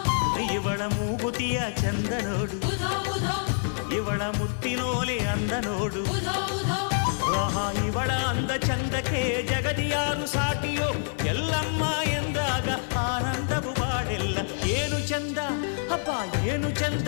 ಇವಳ ಮೂಗುತಿಯ ಚಂದ ನೋಡು, ಇವಳ ಮುತ್ತಿನೋಲೆ ಅಂದ ನೋಡು. ಆಹಾ, ಇವಳ ಅಂದ ಚಂದಕ್ಕೆ ಜಗದಿಯಾರು ಸಾಟಿಯೋ, ಎಲ್ಲಮ್ಮ ಎಂದಾಗ ಆನಂದವು ಬಾಡೆಲ್ಲ. ಏನು ಚಂದ ಅಪ್ಪ, ಏನು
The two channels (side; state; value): right; silent; digital silence